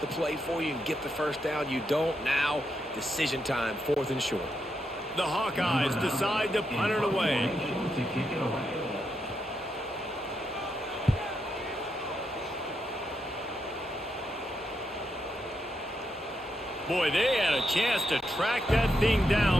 the play for you and get the first down. You don't now. Decision time, 4th and short. The Hawkeyes decide to punt it away. To kick it away. Boy, they had a chance to track that thing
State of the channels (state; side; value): normal; both; correlation 0.82